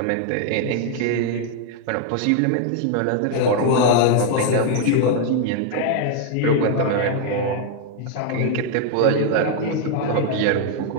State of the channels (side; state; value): both; different; correlation 0.00